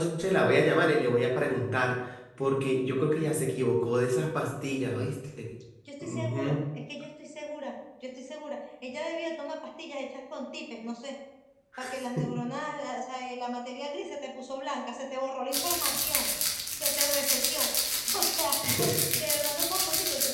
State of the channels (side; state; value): both; identical; correlation 1.00